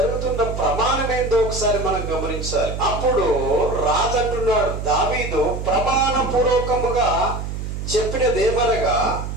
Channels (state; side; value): noise; right; hum, 6 dB below the sound